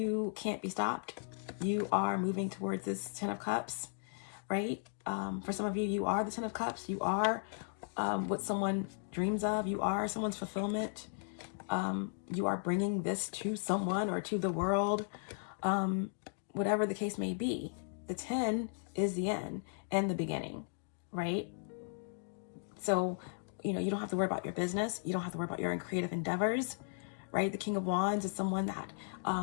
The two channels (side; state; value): right; silent; digital silence